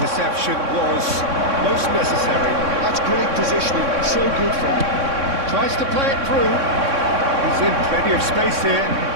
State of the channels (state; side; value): late; left; 3.6 ms